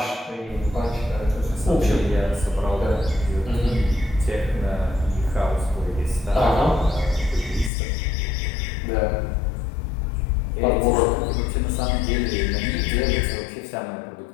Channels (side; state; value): right; drops out; at 7.7 s